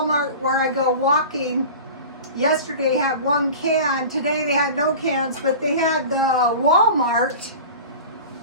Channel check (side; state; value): both; inverted; correlation -0.36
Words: where I go walking yesterday had one can. Today they had no cans, but they had the Walmart,